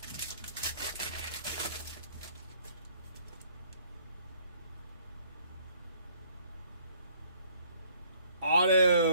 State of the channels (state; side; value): inverted; both; correlation -0.60